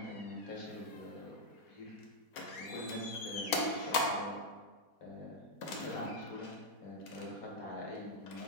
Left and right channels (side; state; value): right; late; 4.2 ms